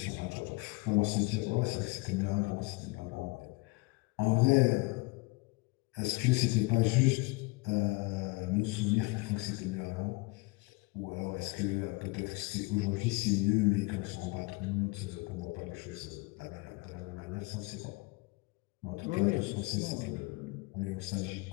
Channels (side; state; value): right; quieter; 25.6 dB